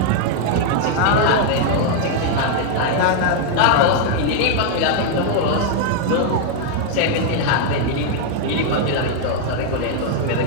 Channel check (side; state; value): both; different; correlation 0.00